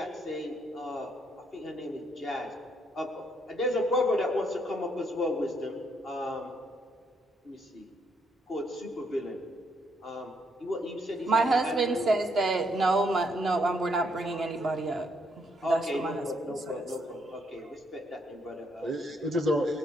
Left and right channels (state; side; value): normal; both; correlation 0.73